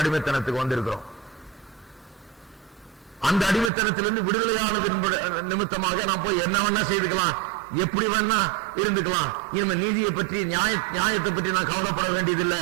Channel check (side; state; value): left; drops out; at 3.7 s